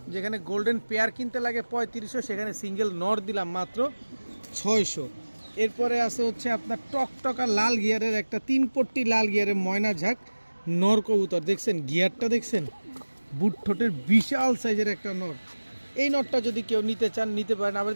যেখানে গোল্ডেন পেয়ার কিনতে লাগে 3500, সেখানে সিঙ্গেল নর দিলাম মাত্র 600। এরপরে আছে হচ্ছে আপনার টকটকা লাল গিয়ারের একটা 3 পট্টি লাল গিয়ারের ময়না ঝাঁক নর কবুতর। দেখছেন গিয়ারটা, দেখছেন বুট ঠোঁটের বিশাল সাইজের একটা নর। এই নটটা যদি কেউ নিতে চান নিতে পারেন। আবার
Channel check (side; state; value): both; inverted; correlation -1.00